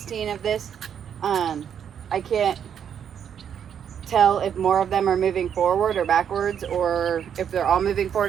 of this, I can't tell if more of them are moving forward or backwards, or if they're all moving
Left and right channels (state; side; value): quieter; left; 8.4 dB